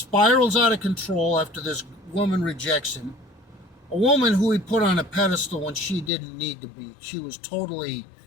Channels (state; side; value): drops out; right; at 6.1 s